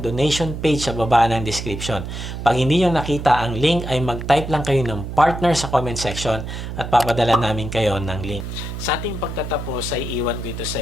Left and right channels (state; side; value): noise; right; hum, 7 dB below the sound